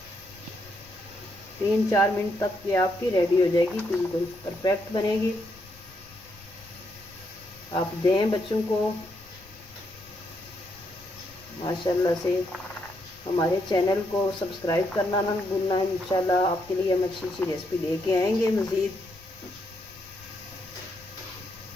3-4 मिनट तक ये आपकी रेडी हो जाएगी, बिल्कुल परफेक्ट बनेगी। आप दें बच्चों को, माशाल्लाह से। हमारे चैनल को सब्सक्राइब करना ना भूलना। इंशाल्लाह आपके लिए हम अच्छी अच्छी रेसिपी लेके आएंगे मज़ीद।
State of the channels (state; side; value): noise; left; rumble, 23 dB below the sound